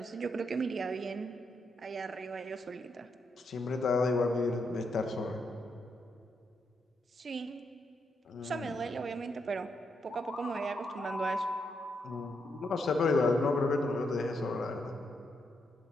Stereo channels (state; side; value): normal; both; correlation 0.80